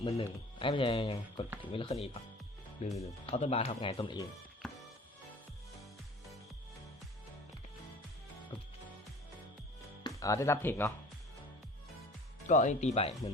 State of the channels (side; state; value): both; normal; correlation 0.45